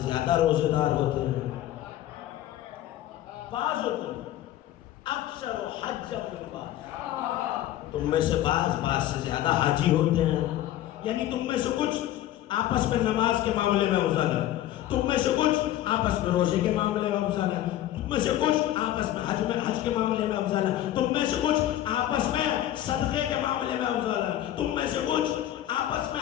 زیادہ روزے دار ہوتے ہیں. بعضوں کو اکثر حج بعض، تم میں سے بعض سے زیادہ حاجی ہوتے ہیں. یعنی تم میں سے کچھ آپس میں نماز کے معاملے میں افضل ہے، تم میں سے کچھ آپس میں روزے کے معاملے میں افضل ہے، تم میں سے کچھ آپس میں حج کے معاملے میں افضل ہے، تم میں سے کچھ آپس میں صدقے کے معاملے میں افضل ہے، تم میں سے کچھ آپس میں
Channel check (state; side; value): quieter; right; 13.1 dB